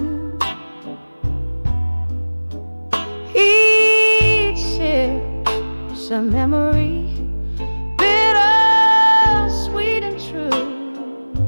Each sip's a memory, bitter, sweet and true.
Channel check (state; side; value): inverted; both; correlation -1.00